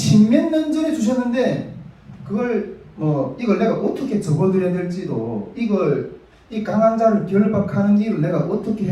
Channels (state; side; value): identical; both; correlation 1.00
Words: 년 전에 주셨는데 그걸 이걸 내가 어떻게 접어드려야 될지도 이 강한 자를 결박하는 일을 내가 어떻게